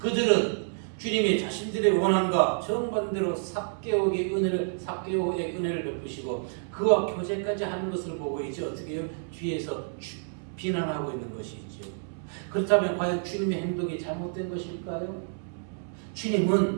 주님이 자신들의 원함과 정반대로 삭개오의 은혜를 베푸시고 그와 교제까지 하는 것을 보고 이제 어떻게 해요? 뒤에서 비난하고 있는 것이죠. 그렇다면 과연 주님의 행동이 잘못된 것일까요?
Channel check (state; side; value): silent; left; 59 dB below the other